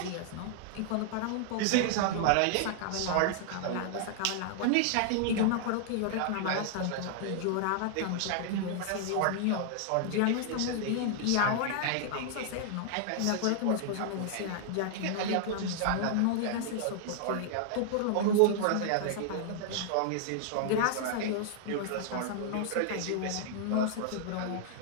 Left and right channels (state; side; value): different; both; correlation -0.01